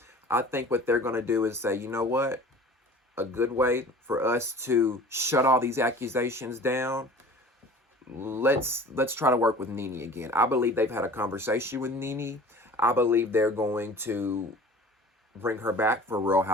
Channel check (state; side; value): normal; both; correlation 0.43